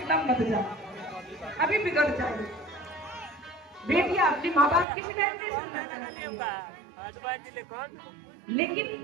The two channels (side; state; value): left; drops out; at 4.9 s